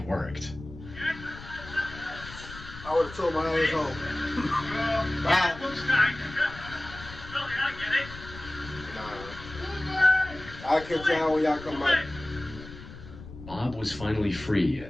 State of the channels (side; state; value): left; noise; rumble, 15 dB below the sound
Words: worked. I would have told my ass home. Bye. Nah. I'll catch y'all when y'all come back. Bob was finally free,